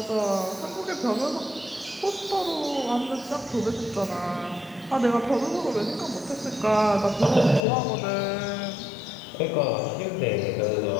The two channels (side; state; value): right; drops out; at 7.6 s